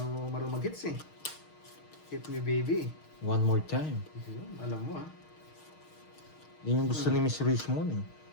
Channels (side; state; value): right; late; 6.4 ms